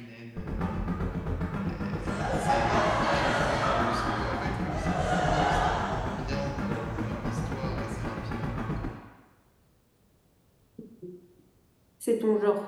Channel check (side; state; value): both; identical; correlation 1.00